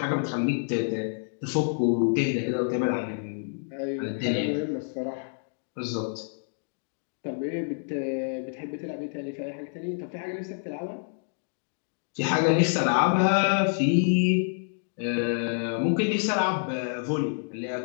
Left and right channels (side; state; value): right; silent; digital silence